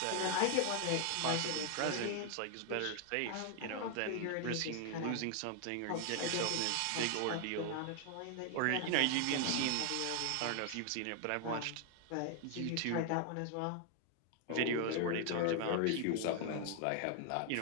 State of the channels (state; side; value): different; both; correlation 0.00